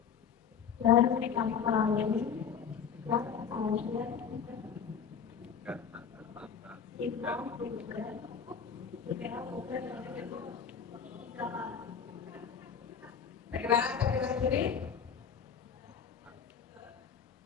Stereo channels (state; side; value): quieter; right; 7.2 dB